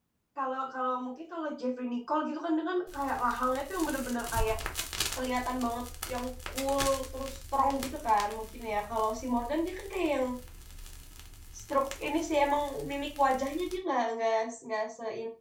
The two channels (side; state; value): both; identical; correlation 1.00